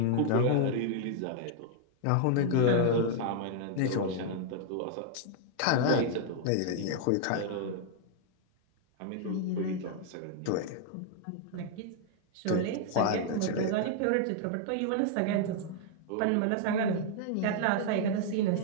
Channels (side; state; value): both; different; correlation 0.00